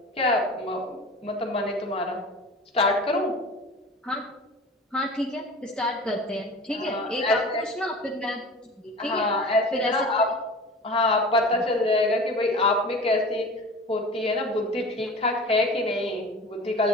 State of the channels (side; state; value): both; normal; correlation 0.37